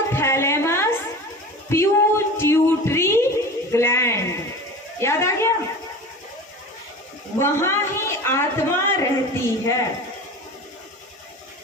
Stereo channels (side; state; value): both; normal; correlation 0.34